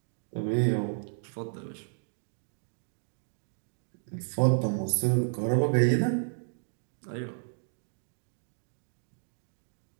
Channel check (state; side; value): silent; left; digital silence